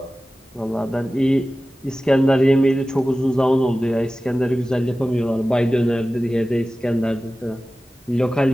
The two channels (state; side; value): normal; both; correlation 0.96